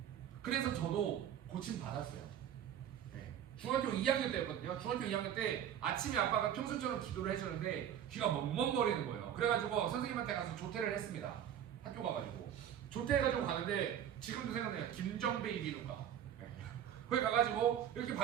그래서 저도 고침 받았어요. 중학교 2학년 때였거든요. 중학교 2학년 때 아침에 아빠가 평소처럼 기도를 해주는데 귀가 멍멍거리는 거예요. 그래가지고 선생님한테 가서 조퇴를 했습니다. 학교 가가지고 조퇴해가지고 가는데 지금도 생각나요. 김정배 비누가 거기 가가지고 이렇게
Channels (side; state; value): left; quieter; 9.9 dB